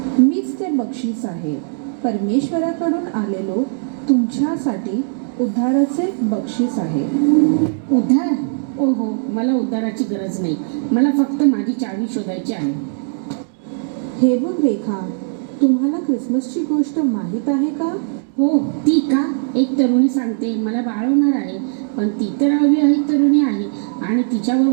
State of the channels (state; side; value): silent; left; digital silence